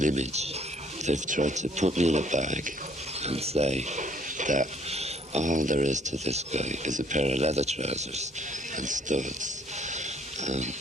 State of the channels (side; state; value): both; normal; correlation 0.62